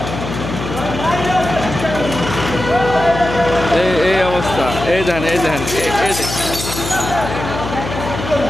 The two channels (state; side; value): noise; left; hum, 7 dB below the sound